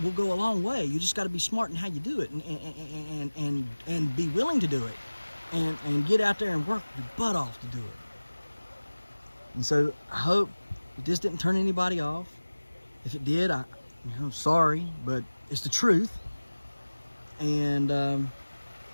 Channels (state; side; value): inverted; both; correlation -1.00